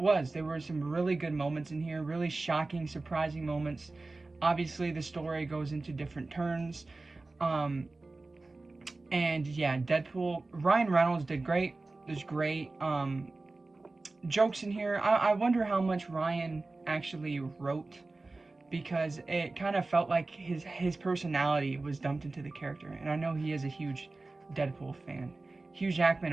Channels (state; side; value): quieter; left; 3.3 dB